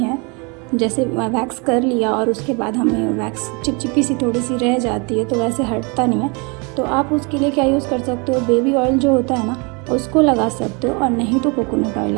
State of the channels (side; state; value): left; quieter; 31.5 dB